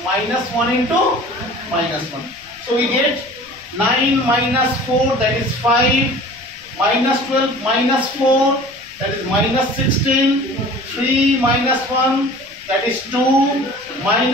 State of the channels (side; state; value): left; noise; rumble, 28 dB below the sound